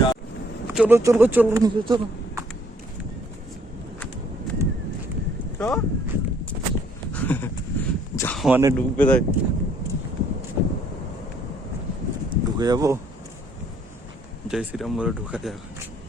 চলো চলো চলো নিচে চলো। যা মানে ঢুকবে তাই ঢুকে যাবো। জয় শ্রীরাম বলে ঢুকা যাবে।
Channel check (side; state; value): both; normal; correlation 0.63